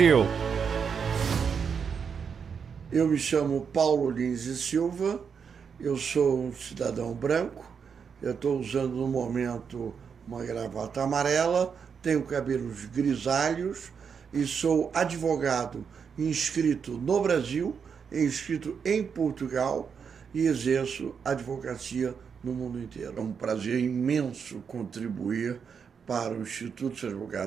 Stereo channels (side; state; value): left; quieter; 6.5 dB